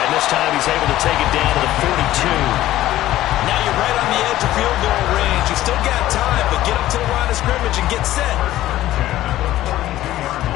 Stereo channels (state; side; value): quieter; right; 14.6 dB